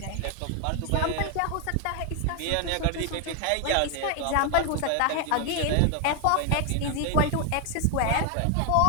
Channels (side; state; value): both; different; correlation 0.01